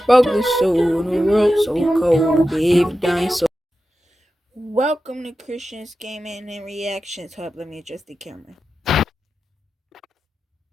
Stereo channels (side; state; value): both; normal; correlation 0.92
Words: Broke this soul in a world so cold. Gave dying soul. Welcome to Christian's Gaming and Reactions Hub. Let me adjust the camera.